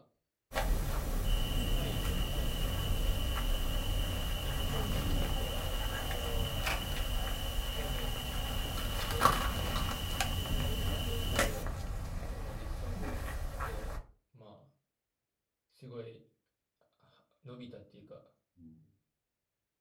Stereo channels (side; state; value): both; identical; correlation 1.00